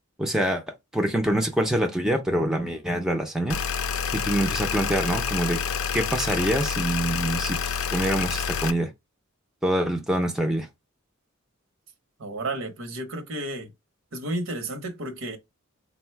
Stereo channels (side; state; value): both; normal; correlation 0.65